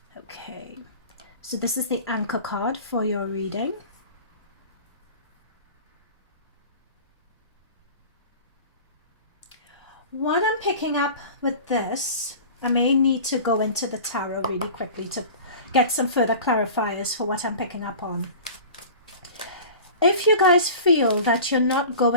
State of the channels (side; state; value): both; inverted; correlation -0.38